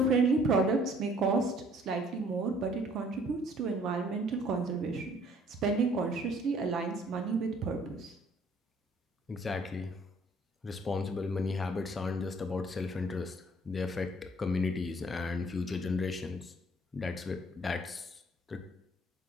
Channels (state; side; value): normal; both; correlation 0.58